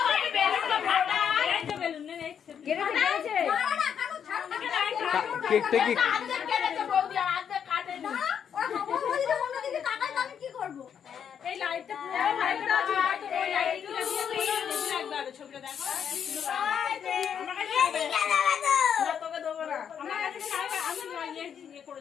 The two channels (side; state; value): right; quieter; 8.0 dB